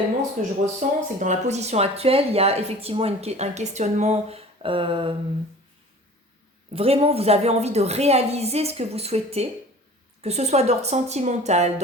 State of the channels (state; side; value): normal; both; correlation 0.43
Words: ce que je ressens, c'est que dans la position actuelle, il y a effectivement un questionnement. Vraiment, vous avez envie de réaliser ce que vous souhaitez, que ce soit d'ordre sentimental,